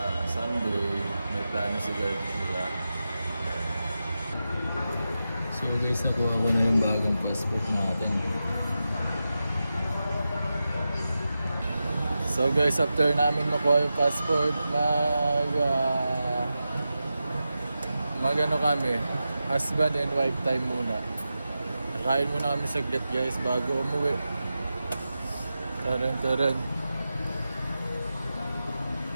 Sunday may plano si God nila. So guys, nakuha ko na yung bagong passport natin. So guys, after namin makuha yung passport, mag-ano kami, husband and wife time muna. Kain muna kami saglit guys bago umuwi. Taran.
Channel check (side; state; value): both; inverted; correlation -0.91